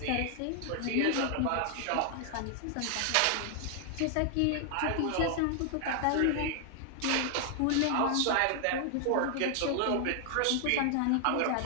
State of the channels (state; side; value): different; both; correlation 0.00